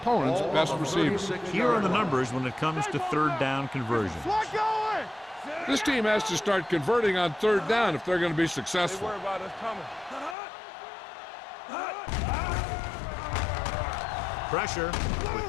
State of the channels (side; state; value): right; drops out; at 10.4 s